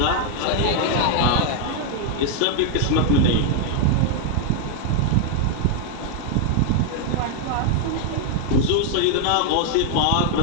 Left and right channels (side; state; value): both; different; correlation 0.00